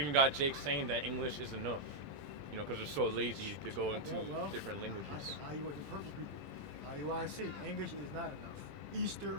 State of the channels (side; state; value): left; late; 20 ms